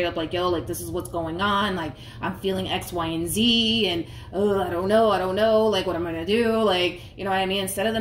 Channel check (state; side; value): identical; both; correlation 1.00